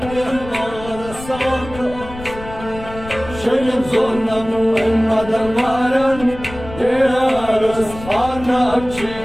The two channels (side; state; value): left; noise; rumble, 14 dB below the sound